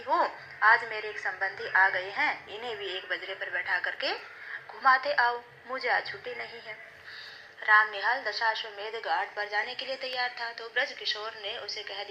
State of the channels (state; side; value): identical; both; correlation 1.00